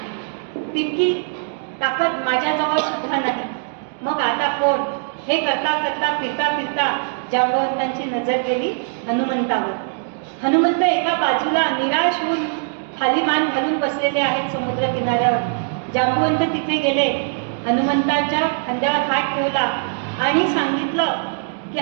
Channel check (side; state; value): left; silent; digital silence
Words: तितकी ताकद माझ्याजवळ सुद्धा नाही. मग आता कोण? हे करता करता फिरता फिरता जांबवंतांची नजर गेली हनुमंतावर. हनुमंत एका बाजूला निराश होऊन खाली मान घालून बसलेले आहेत समुद्र किनाऱ्यावर. जांबवंत तिथे गेले, हनुमंताच्या खांद्यावर हात ठेवला आणि सांगितलं की